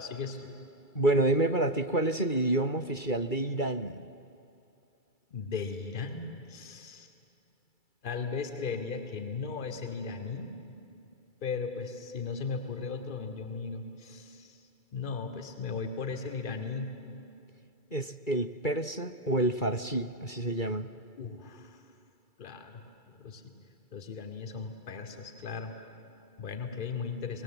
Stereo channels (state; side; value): late; right; 2.3 ms